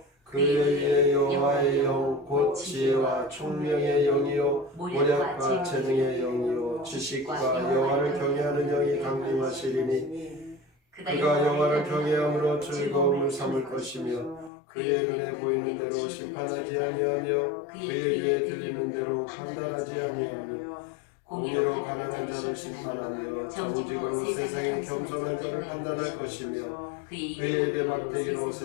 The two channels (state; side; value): drops out; right; at 14.5 s